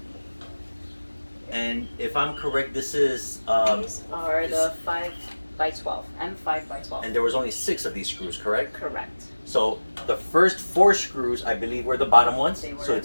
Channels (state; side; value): inverted; both; correlation -1.00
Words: And if I'm correct, this is These are the 5x12, M5x12. and there was only 6 of these screws, correct? Correct. So the first 4 screws, I believe, were the bottom ones. They were. So